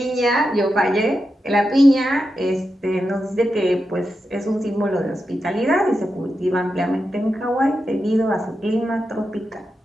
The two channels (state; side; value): normal; both; correlation 0.88